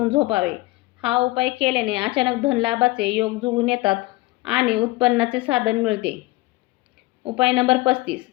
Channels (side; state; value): right; quieter; 20.6 dB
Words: झोपावे. हा उपाय केल्याने अचानक धनलाभाचे योग जुळून येतात आणि उत्पन्नाचे साधन मिळते. उपाय नंबर 35.